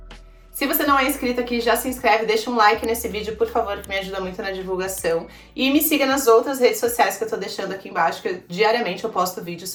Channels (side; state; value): both; identical; correlation 1.00